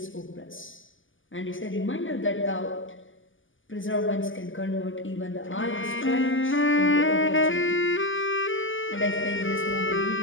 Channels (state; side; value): late; right; 0.58 ms